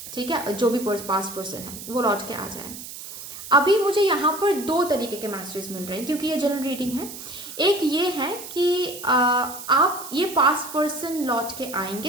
ठीक है, जो भी पास्ट पर्सन है वो लौट के आ जाए। अभी मुझे यहाँ पर दो तरीके के मैसेजेस मिल रहे हैं क्योंकि ये जनरल रीडिंग है। एक ये है कि आप ये पास्ट पर्सन लौट के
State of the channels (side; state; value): right; noise; hiss, 12 dB below the sound